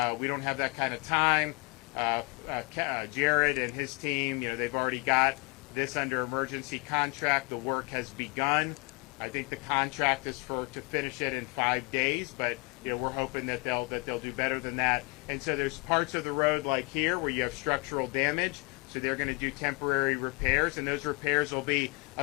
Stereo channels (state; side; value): quieter; right; 29.4 dB